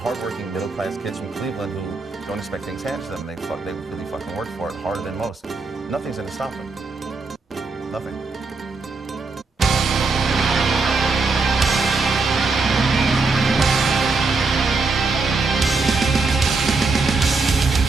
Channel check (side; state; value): left; quieter; 3.9 dB